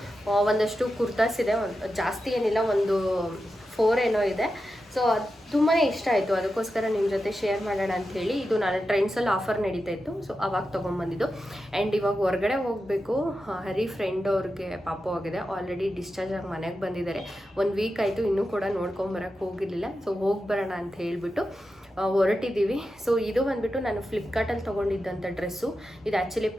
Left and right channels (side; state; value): both; normal; correlation 0.90